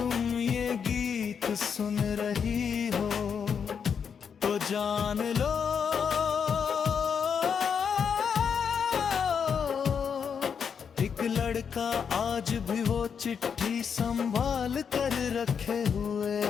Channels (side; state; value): right; quieter; 6.9 dB